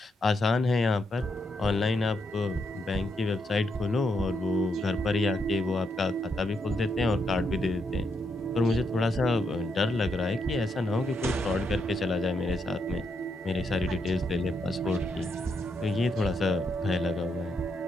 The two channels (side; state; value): both; normal; correlation 0.79